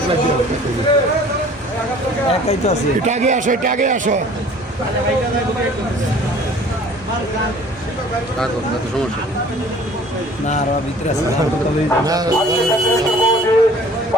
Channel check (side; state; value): both; normal; correlation 0.50